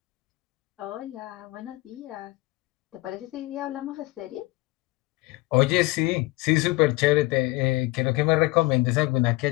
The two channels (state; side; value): quieter; right; 22.5 dB